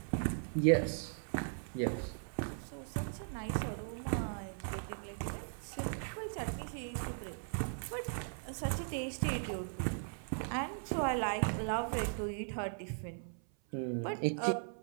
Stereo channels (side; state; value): left; silent; 52 dB below the other